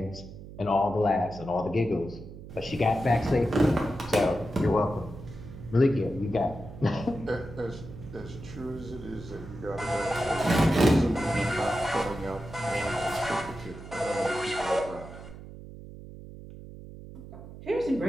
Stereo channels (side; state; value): right; noise; hum, 14 dB below the sound